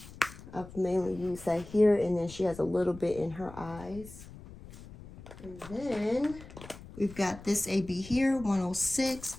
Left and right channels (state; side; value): noise; left; rumble, 16 dB below the sound